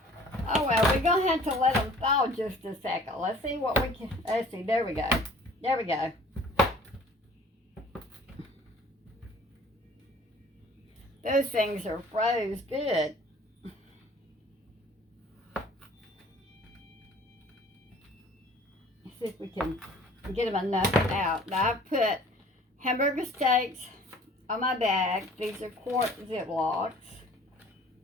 Oh well, we're gonna have to let them thaw just a second. Let's see what we can. Let's see. There we go. There we go. Those things are froze good. Let's see if we can get them enough out. Now I've put hamburger steaks on my bag. These are quart Ziplocs.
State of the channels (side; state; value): both; normal; correlation 0.51